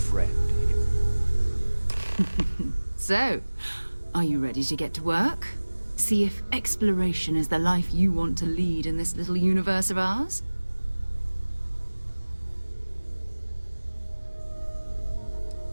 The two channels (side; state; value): both; inverted; correlation -1.00